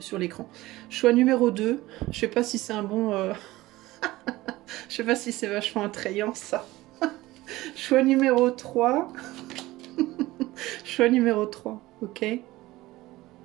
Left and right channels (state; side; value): quieter; left; 18.2 dB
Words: l'écran. Choix numéro 2, je sais pas si c'est un bon... je sais pas si c'est vachement attrayant ça. Choix numéro 3. Choix numéro 3, ok.